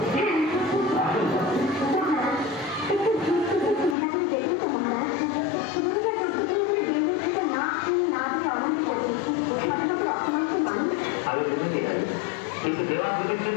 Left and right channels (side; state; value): right; drops out; at 4.0 s